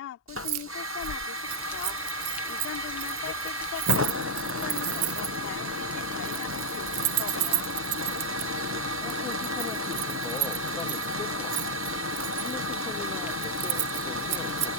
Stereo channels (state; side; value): normal; both; correlation -0.02